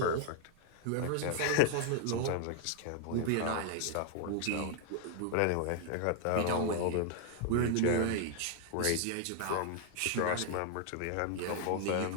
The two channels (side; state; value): both; different; correlation 0.00